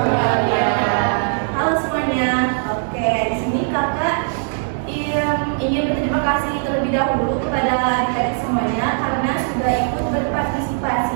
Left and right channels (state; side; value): silent; left; digital silence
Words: Halo semuanya. Oke, di sini kakak ingin berterima kasih terlebih dahulu kepada adik-adik semuanya karena sudah ikut